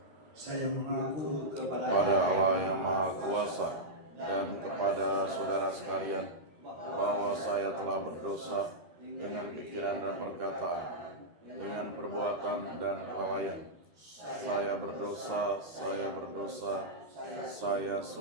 Saya mengaku kepada Allah yang Maha Kuasa dan kepada saudara sekalian bahwa saya telah berdosa dengan pikiran dan perkataan, dengan perbuatan dan kelalaian. Saya berdosa, saya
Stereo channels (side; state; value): left; late; 13 ms